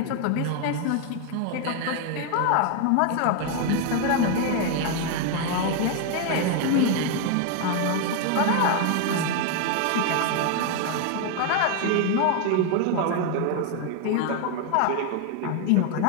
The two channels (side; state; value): both; different; correlation 0.01